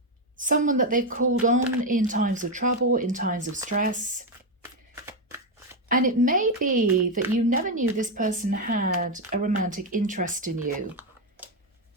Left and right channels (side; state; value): both; normal; correlation 0.07